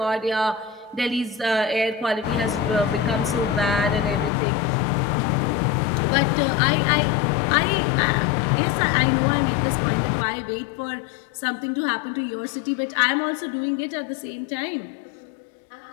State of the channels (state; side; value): drops out; right; at 4.3 s